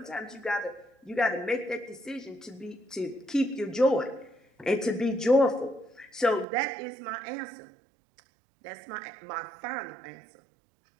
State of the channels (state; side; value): drops out; left; at 6.5 s